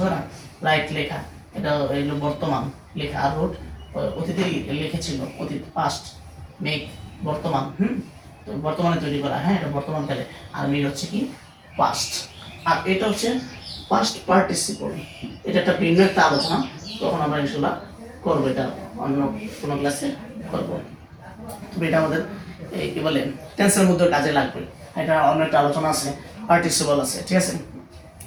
না রাইট লেখা এটা এগুলো বর্তমান লেখা আর রোড অতীতে লিখেছিল অতীত পাস্ট মেক বর্তমান তো বর্তমানে তৈরি করা হ্যাঁ এটা বর্তমানকালে আর মেক হচ্ছে কি পাস্ট আর এটা হচ্ছে পাস্ট পার্টিসিপল এটা একটা ভিন্ন একটা আলোচনা তখন আমরা ইনশাল্লাহ করবো এটা অন্য কোনো ক্লাসে করবো তবে এটা আমাদের এই কি বলে টেন্সের মধ্যে কাজে লাগবে এটা অন্য একটা আলোচনা আছে পার্টিসিপল আছে ঠিক আছে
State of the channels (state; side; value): identical; both; correlation 1.00